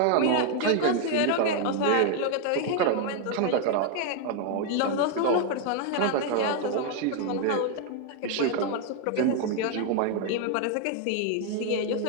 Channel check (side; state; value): both; different; correlation 0.01